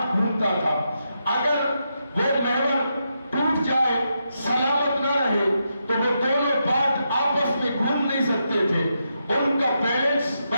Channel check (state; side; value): inverted; both; correlation -0.84